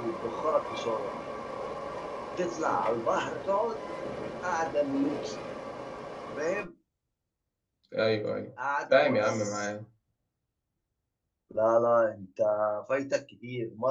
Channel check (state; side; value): identical; both; correlation 1.00